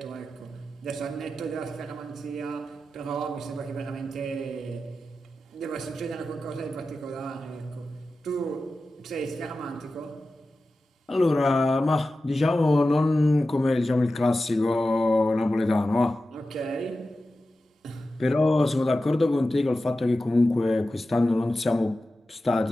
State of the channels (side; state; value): both; normal; correlation 0.93